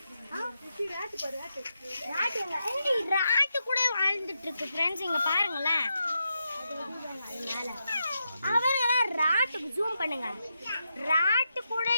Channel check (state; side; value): inverted; both; correlation -0.85